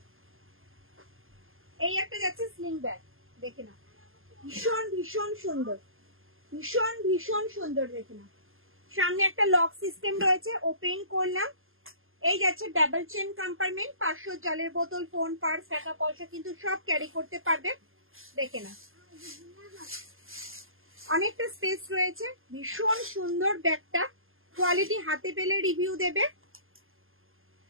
এই একটা যাচ্ছে স্লিং ব্যাগ, দেখে নাও। ভীষণ ভীষণ সুন্দর, ভীষণ ভীষণ সুন্দর, দেখে নাও। সামনে একটা লক সিস্টেম রয়েছে, ওপেন করলাম। এই যাচ্ছে ডাবল চেন কম্পার্টমেন্ট, 500 জলের বোতল, ফোন, পার্স, টাকা পয়সা কিন্তু সব ক্যারি করতে পারবে, দেখে নাও। অনেকটা স্পেস রয়েছে, ভীষণ সুন্দর ব্যাগটা। কোয়ালিটি হাতে পেলে রিভিউ দেবে।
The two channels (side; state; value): left; late; 0.60 ms